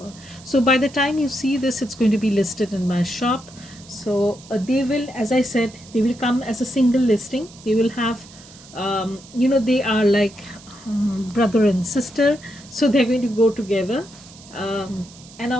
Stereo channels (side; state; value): right; noise; hiss, 21 dB below the sound